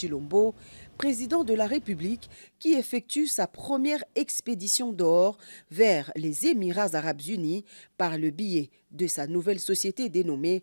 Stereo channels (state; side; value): inverted; both; correlation -1.00